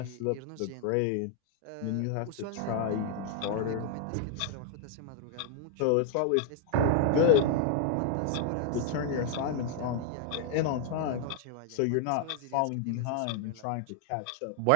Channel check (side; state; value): both; different; correlation 0.00